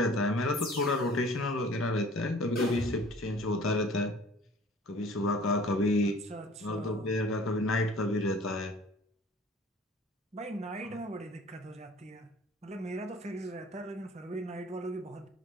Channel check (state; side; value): normal; both; correlation 0.48